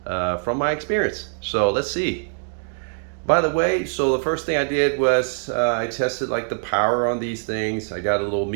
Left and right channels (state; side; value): silent; left; digital silence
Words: from my experience. So let's see. By the way, so the first thing I did was I tested like the power on these things. I got a little